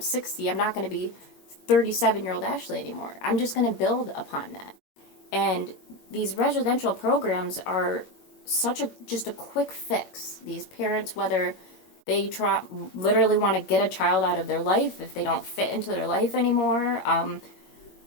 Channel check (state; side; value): late; right; 21 ms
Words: I'm not going to be 37-year-old Ashley anymore. I'm just going to build upon that. And these residential programs are just a quick fix. These parents, whether they literally want to get a child out of their life, if they don't fit into their life anymore,